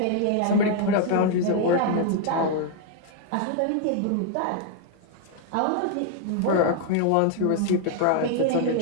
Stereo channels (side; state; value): both; different; correlation 0.00